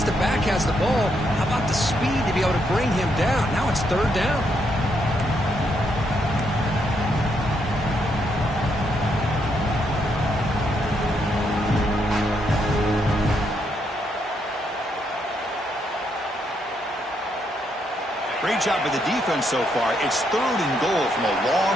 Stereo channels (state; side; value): normal; both; correlation 0.77